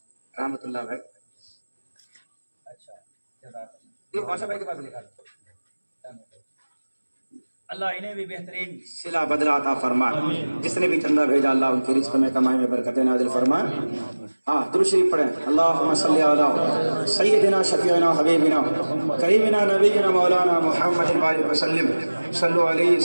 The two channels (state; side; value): inverted; both; correlation -1.00